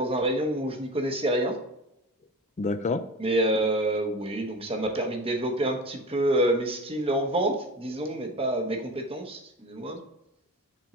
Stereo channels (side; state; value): both; normal; correlation 0.32